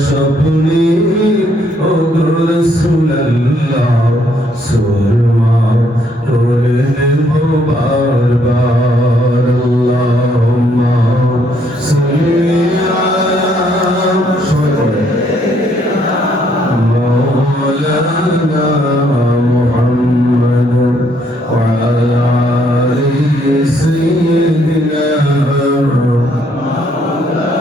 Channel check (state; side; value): normal; both; correlation 0.69